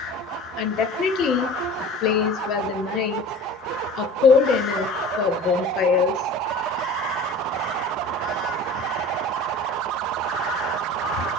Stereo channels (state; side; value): normal; both; correlation 0.40